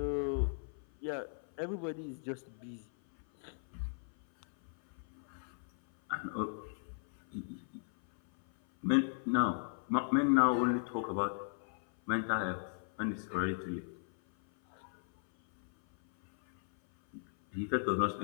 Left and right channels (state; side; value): silent; right; 53 dB below the other